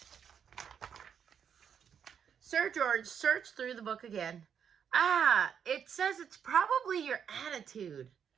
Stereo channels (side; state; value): left; quieter; 7.8 dB